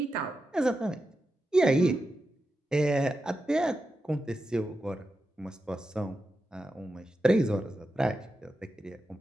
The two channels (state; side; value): normal; both; correlation 0.89